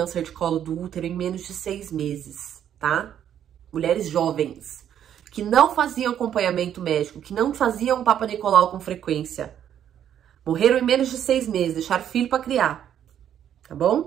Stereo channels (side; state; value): left; quieter; 9.9 dB